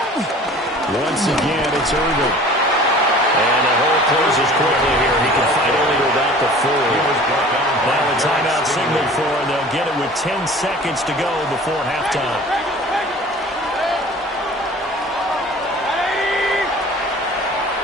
Once again, it's Irving. And the hole closes quickly here. He can fight only to about the 4. Now a timeout signal for, and they'll get it with 10 seconds to go before halftime.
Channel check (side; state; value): both; normal; correlation 0.45